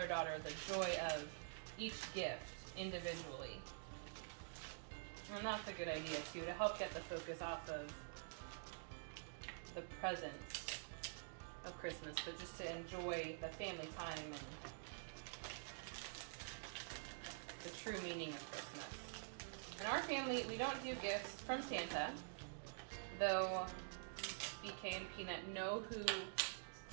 daughter the joy of each gift individually. And that's a good idea too, to help get the focus off of the presents of Christmas, but just to enjoy the family time and the true meaning of Christmas. In our family, we don't do gifts from Santa, though BK and Peanut know who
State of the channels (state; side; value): silent; left; digital silence